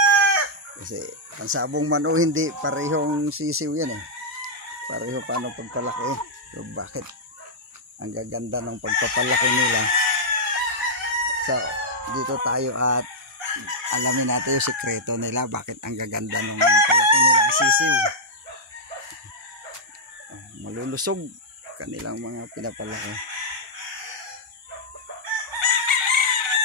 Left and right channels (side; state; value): both; normal; correlation -0.06